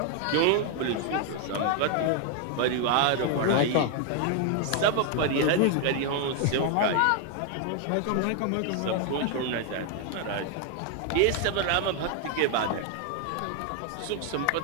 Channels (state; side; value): different; both; correlation 0.00